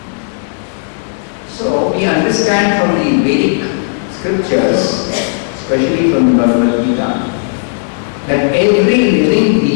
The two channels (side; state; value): right; silent; digital silence